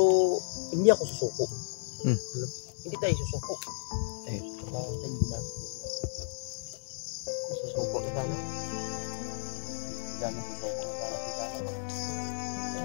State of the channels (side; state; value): right; silent; digital silence